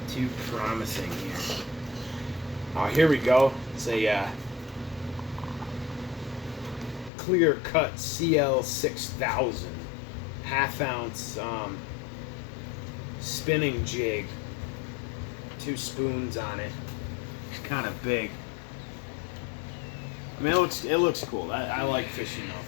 too promising here. Oh, here we go. It's a clear cut CL 6000 half-ounce spinning jig. 2 spoons on it. It's kind of big. I mean, it looks cool. I like fishing off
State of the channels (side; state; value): right; drops out; at 7.1 s